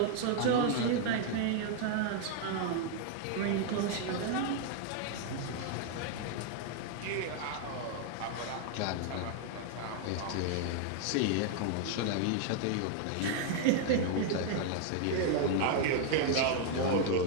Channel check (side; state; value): both; different; correlation 0.00